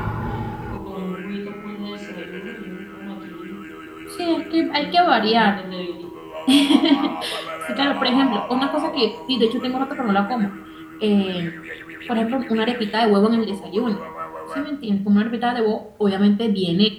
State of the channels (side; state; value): both; identical; correlation 1.00